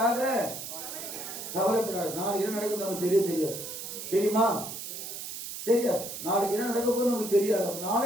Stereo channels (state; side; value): noise; right; hiss, 8 dB below the sound